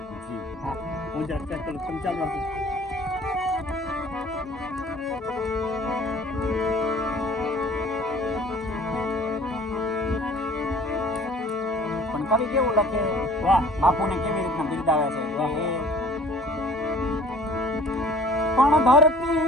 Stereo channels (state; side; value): normal; both; correlation 0.50